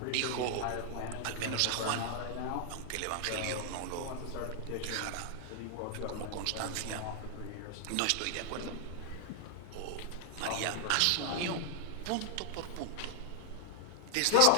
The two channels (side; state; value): both; different; correlation 0.00